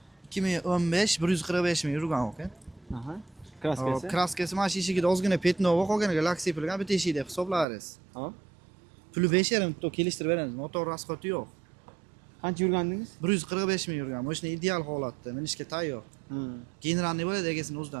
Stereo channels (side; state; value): left; drops out; at 7.7 s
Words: 2015 145 ming yurgan aka. Aha. Kraskasi. Kraskasi mana shu eshigida ozgina petnova qolganiga lak sepilgan bitta eshikda hisoblarsiz. Hop. Puli 5,5 to kelishtirib beramiz. Motor rasxoti yo'q. Qancha yurgandingiz? 145 ming yurgan. Mashina ideal holatda, minishga tayyor. Generalniy bo'ladi egasini